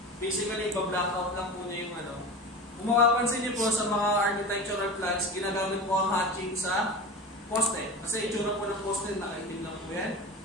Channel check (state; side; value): normal; both; correlation 0.30